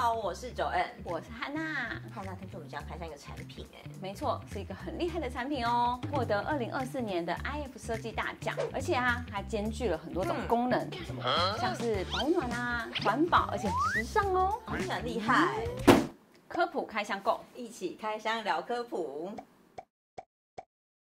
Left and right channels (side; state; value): both; identical; correlation 1.00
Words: 好，我是Joanne，我是汉娜。汉娜，听说我们家开箱一个产品没错，是一个很厉害的产品哦，获得2024年的 IF 设计大奖，而且还兼具了很多种功能，像是保暖环保，而且时尚哦，很厉害。科普开箱购，一起开箱聊科普。